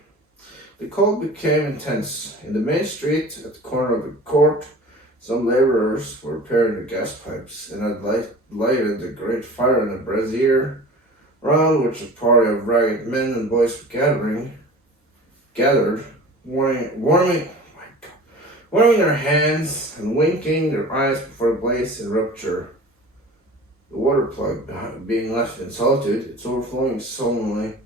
The cold became intense. In the main street, at the corner of the court, some labourers were repairing the gas pipes, and had lighted a great fire in a brazier, round which a party of ragged men and boys were gathered, warming their hands and winking their eyes before the blaze in rupture. The water plug, being left in solitude, its overflowing sullenly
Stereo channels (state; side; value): normal; both; correlation 0.40